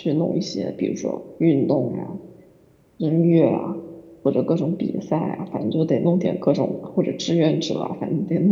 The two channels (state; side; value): identical; both; correlation 1.00